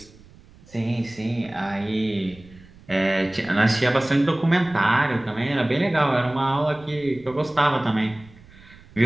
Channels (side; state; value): right; noise; rumble, 24 dB below the sound